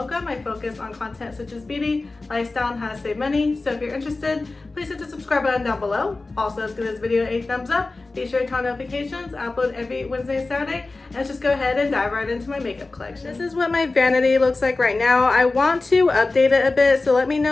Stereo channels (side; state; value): right; quieter; 3.4 dB